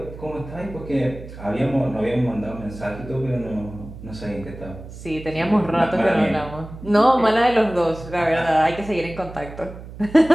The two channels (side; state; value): right; noise; hum, 14 dB below the sound